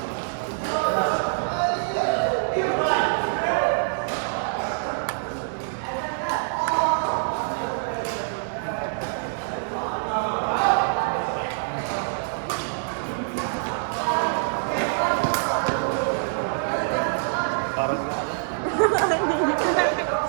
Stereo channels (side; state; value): left; silent; 62 dB below the other